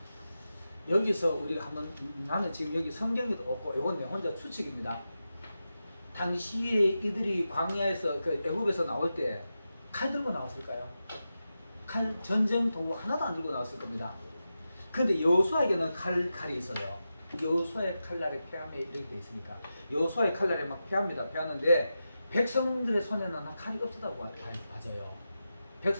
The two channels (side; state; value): both; inverted; correlation -0.91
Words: 여기서 우리가 한번 나는 지금 여기 성경에도 없고 이건 내 혼자 추측입니다. 당시에 이들이 광야에서 그 애굽에서 나올 때 칼 들고 나왔을까요? 칼 전쟁 도구 하나도 안 들고 나왔을 겁니다. 근데 여호수아에게는 칼이 있어요. 여호수아의 칼날에 패함에 이렇게 돼 있으니까 여호수아의 칼날에 막 패하는데 백성들의 손에는 칼이 없었다고 봐져요.